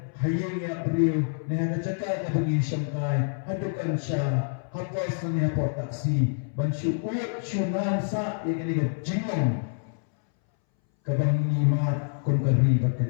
hayang ya priyo neha jaka ka bagi syamkai hadukan sya hapas ni hapot taksi ban syuut syunan sa ya kani ka jingong kabangi mat kun kari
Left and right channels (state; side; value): silent; right; 60 dB below the other